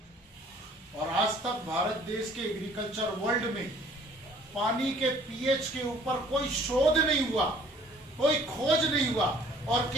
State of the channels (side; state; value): both; normal; correlation 0.56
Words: और आज तक भारत देश के एग्रीकल्चर वर्ल्ड में पानी के pH के ऊपर कोई शोध नहीं हुआ, कोई खोज नहीं हुआ, और